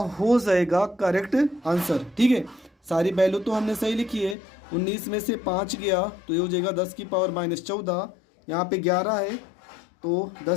जाएगा करेक्ट आंसर। ठीक है, सारी वैल्यू तो हमने सही लिखी है। 19 में से 5 गया तो ये हो जाएगा 10⁻14, यहाँ पे 11 है तो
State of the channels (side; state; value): right; drops out; at 4.4 s